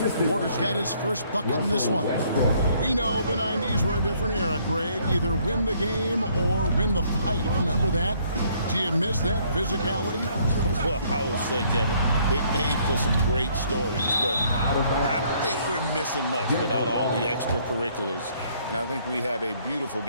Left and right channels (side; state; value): both; inverted; correlation -0.64